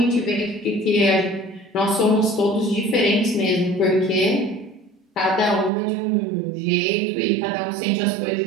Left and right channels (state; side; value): drops out; left; at 5.7 s